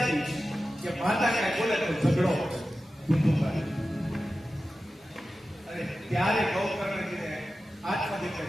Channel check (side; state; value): both; normal; correlation 0.93